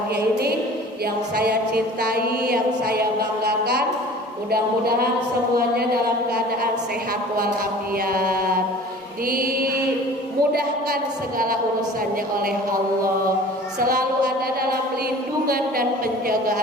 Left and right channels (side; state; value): both; normal; correlation 0.44